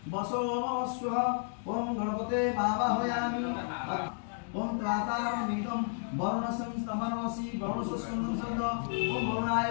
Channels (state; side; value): silent; right; 56 dB below the other